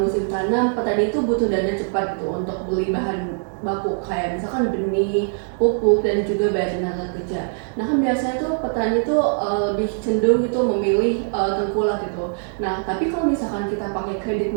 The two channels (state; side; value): silent; left; 64 dB below the other